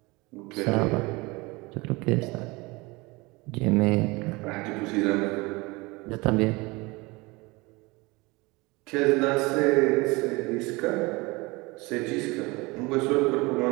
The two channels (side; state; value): left; quieter; 24.2 dB